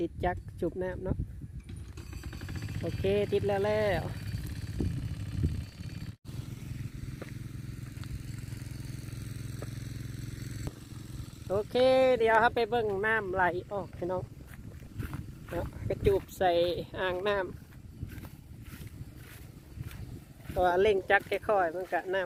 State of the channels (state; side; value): identical; both; correlation 1.00